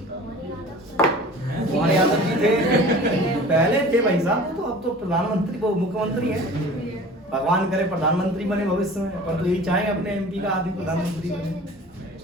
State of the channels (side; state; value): both; normal; correlation 0.42